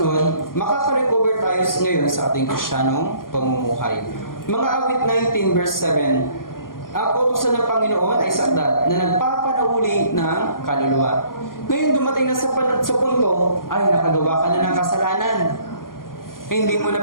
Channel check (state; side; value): late; right; 0.91 ms